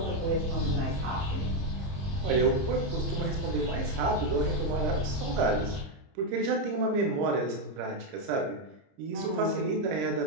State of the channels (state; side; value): late; left; 30 ms